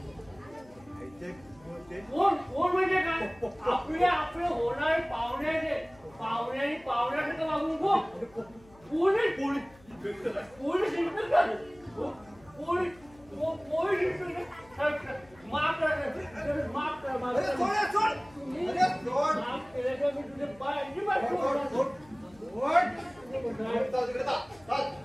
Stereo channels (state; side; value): noise; left; hum, 26 dB below the sound